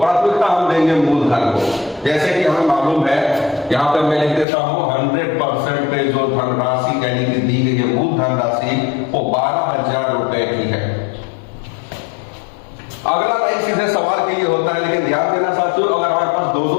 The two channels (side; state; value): right; drops out; at 4.5 s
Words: हम देंगे मूलधन को। जैसे कि हमें मालूम है, यहाँ पे मैं लिख देता हूँ 100% पे जो धनराशि यानी कि दी गई है मूल धनराशि, वो 12,000 रुपए की है। अगला लाइन सीधे सवाल के लिए होता है, लेकिन ध्यान देना साथियों, अगर हमारे पास दो